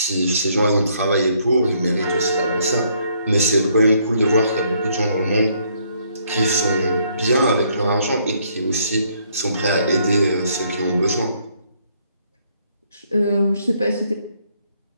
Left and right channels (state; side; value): inverted; both; correlation -0.69